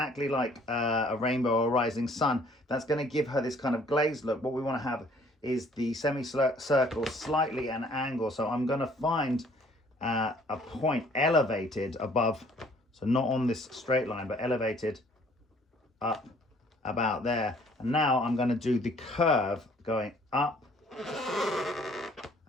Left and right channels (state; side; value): normal; both; correlation 0.58